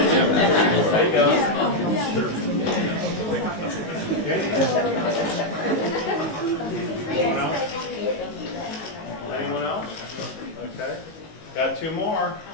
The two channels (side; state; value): right; late; 19 ms